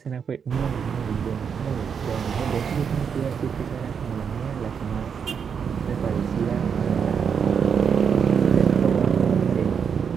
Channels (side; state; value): left; quieter; 6.9 dB